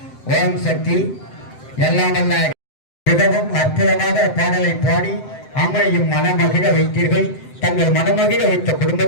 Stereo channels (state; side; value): late; right; 7.8 ms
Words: ஓம் சக்தி. எல்லாம் நல்ல மிகவும் அற்புதமாக பாடலை பாடி அம்மையும் மனமகிழ வைத்தீர்கள். தங்கள் மனமகிழ வைத்த